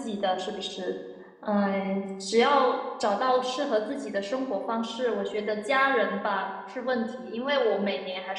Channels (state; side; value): identical; both; correlation 1.00